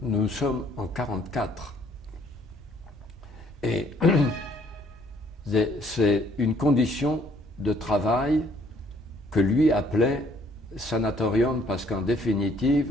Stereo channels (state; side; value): normal; both; correlation 0.63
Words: sommes en 1944. Et c'est une condition de travail que lui appelait sanatorium, parce qu'en